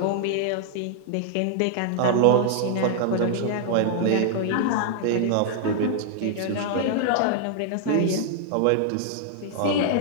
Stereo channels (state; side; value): different; both; correlation 0.00